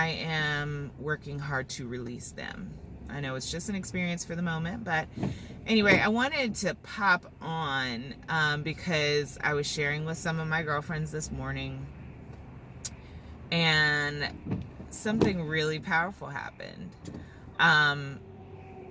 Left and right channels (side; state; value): both; identical; correlation 1.00